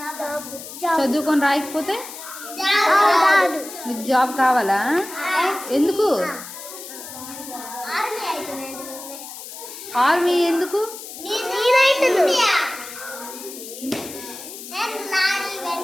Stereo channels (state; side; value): noise; left; hiss, 12 dB below the sound